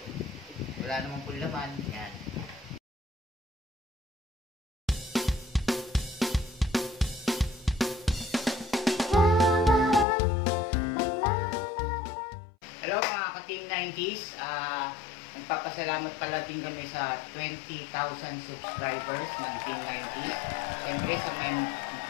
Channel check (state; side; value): drops out; right; at 10.1 s